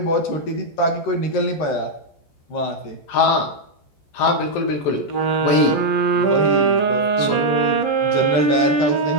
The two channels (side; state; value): right; late; 14 ms